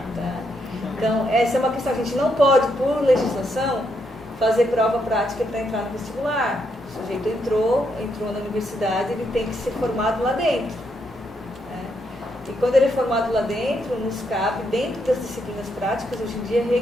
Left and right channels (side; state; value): both; normal; correlation 0.78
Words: Tá? Então, essa é uma questão. A gente não pode, por legislação, fazer prova prática para entrar no vestibular. O sujeito entrou na universidade, ele tem que ser formado lá dentro. Né? E quando ele é formado lá dentro, nos cabe, dentro das disciplinas práticas, hoje em dia,